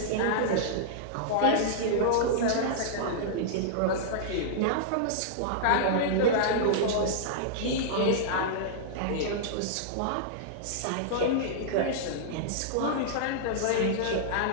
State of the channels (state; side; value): different; both; correlation -0.02